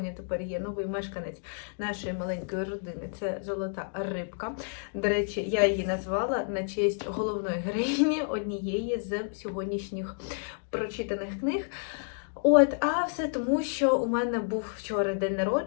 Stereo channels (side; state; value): right; silent; digital silence